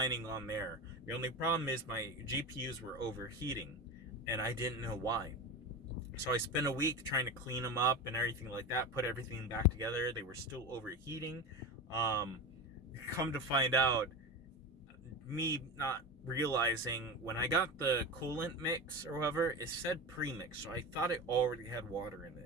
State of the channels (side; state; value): both; normal; correlation 0.24